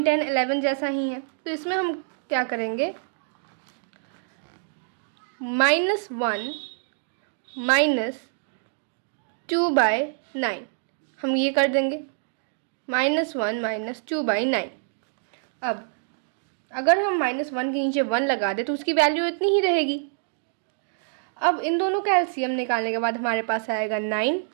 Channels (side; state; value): left; silent; digital silence